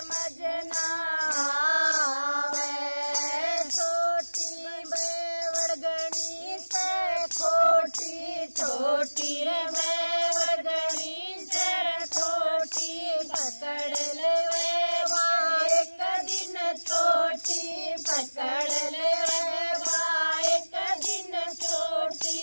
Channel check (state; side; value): inverted; both; correlation -1.00